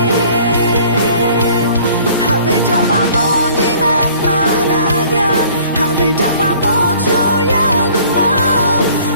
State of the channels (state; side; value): inverted; both; correlation -0.53